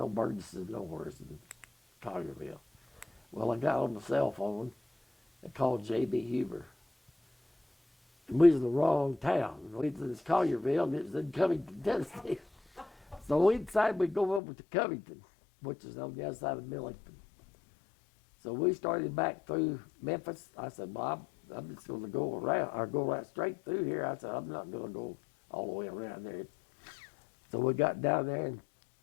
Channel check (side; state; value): right; drops out; at 14.4 s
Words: Burgesses nowhere in Collierville. Well, I got on the cell phone and called J.B. Huber. And we was in the wrong town. We was in Collierville and it was in Covington, Tennessee. So we decided we'd go over to Covington, which is on the other side of Millington. So we started back through Memphis. I said, well, I'm just going to go around, or go right straight through here. I said, I'm not going to go all the way around there. So we got down there, and